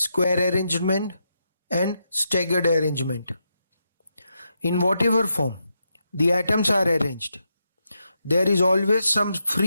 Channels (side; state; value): both; inverted; correlation -0.83